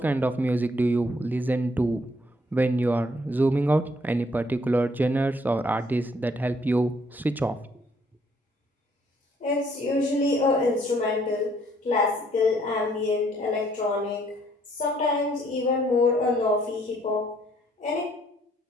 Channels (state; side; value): normal; both; correlation 0.66